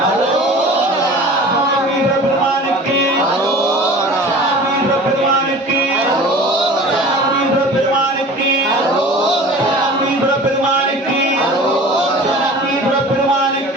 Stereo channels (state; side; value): normal; both; correlation 0.41